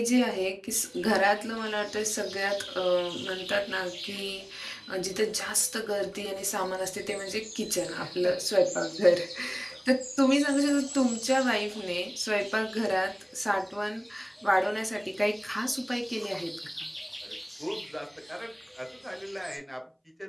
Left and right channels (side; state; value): both; identical; correlation 1.00